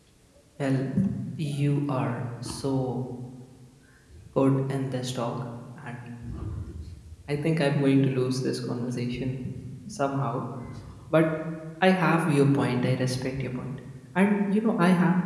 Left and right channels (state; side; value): identical; both; correlation 1.00